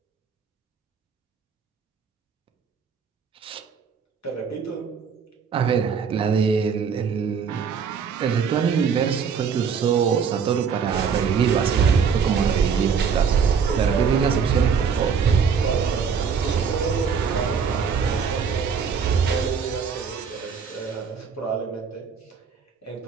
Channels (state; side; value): quieter; left; 6.3 dB